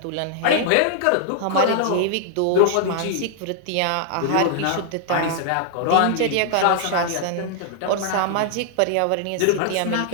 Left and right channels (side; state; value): both; different; correlation -0.01